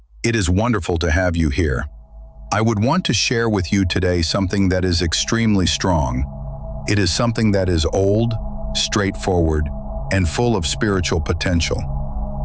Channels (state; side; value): identical; both; correlation 1.00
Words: It is wonderful to have you here. I would want to share with you today something that is extremely strong. It is something that is old, straightforward, and full of spiritual potential.